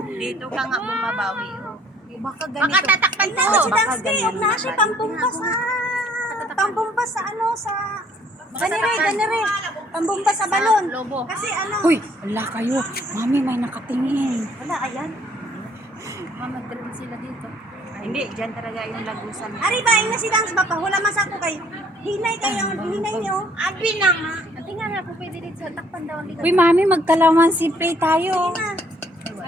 Dito ka nga bumabawi. Oh. Baka Baka tatakpan to. Baka Baka ganyan na siya pambumba sa... Pambumba sa ano, sa... Ganire. Pambumba sa balon. Lobo. Kasi ano... Uy, wala kayo. Mami, may nakatingin. Wala, ayan. Mag-drill sila dito. Hindi, dyan talaga yung lagusan. Ari ba, yung nasi dance ba pa? Wala masako kayo. Hinay kayo, hinay niyo. Abi na nga. Ate nga nga, kung pwede dito sa takpan daw ang ligat. Uy, mami, magkalaman simple tayo.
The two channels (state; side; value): normal; both; correlation 0.61